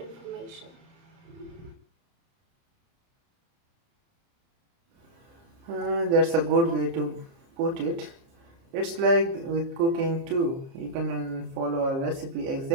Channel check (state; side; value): late; left; 30 ms